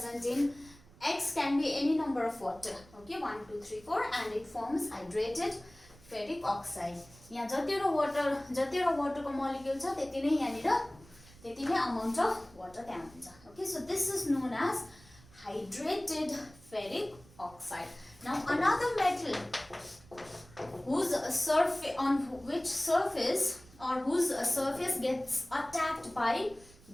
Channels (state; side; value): noise; right; rumble, 24 dB below the sound